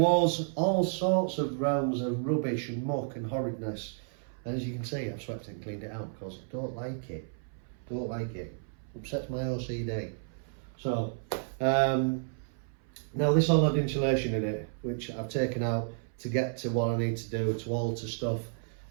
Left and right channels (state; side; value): silent; left; 57 dB below the other